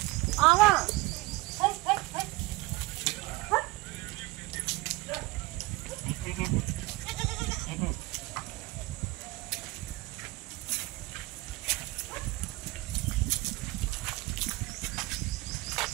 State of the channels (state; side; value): quieter; left; 21.3 dB